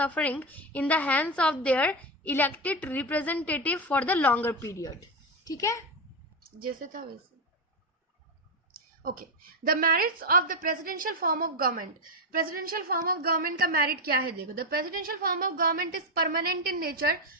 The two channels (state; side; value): normal; both; correlation 0.10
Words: in the hands of their elected representative for the longer period. ठीक है, जैसे था वैसे. Okay, the merits of the presidential form of government. Presidential form of government का merit क्या है, देखो. The presidential form of government is permanent in nature.